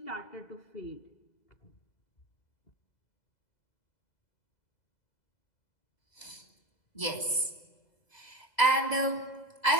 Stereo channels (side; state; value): right; late; 2.0 ms